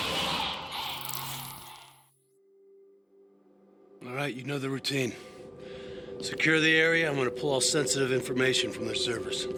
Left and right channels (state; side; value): identical; both; correlation 1.00